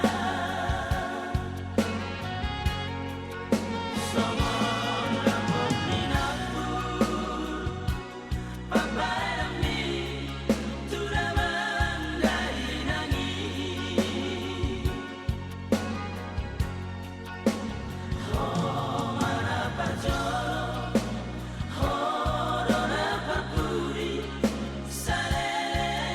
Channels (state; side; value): identical; both; correlation 1.00